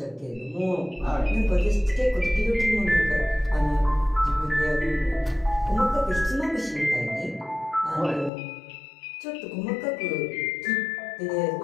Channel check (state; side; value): drops out; right; at 8.3 s